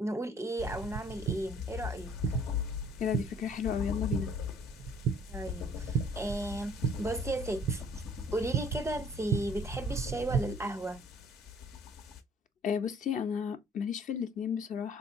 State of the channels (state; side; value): normal; both; correlation 0.57